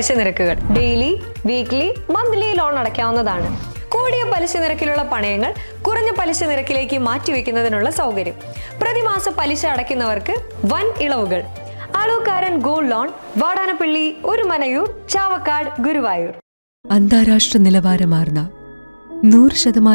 നിരക്കുകൾ ഡെയിലി, വീക്ക്ലി, മന്ത്ലി ലോൺ അടയ്ക്കാവുന്നതാണ്. കൂടിയ പലിശ നിരക്കിലുള്ള പണയങ്ങൾ കുറഞ്ഞ പലിശ നിരക്കിലേക്ക് മാറ്റിവെക്കുന്നതിനുള്ള സൗകര്യം. പ്രതിമാസ പലിശ അടയ്ക്കുന്നവർക്ക് വൻ ഇളവുകൾ. Alukkaran gold loan, Vadanappally, Orumanayur, Chavakkad, Guruvayur. അന്താരാഷ്ട്ര നിലവാരമാർന്ന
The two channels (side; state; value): both; inverted; correlation -1.00